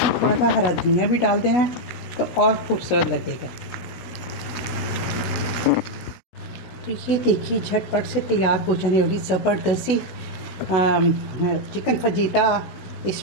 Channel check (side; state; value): right; late; 17 ms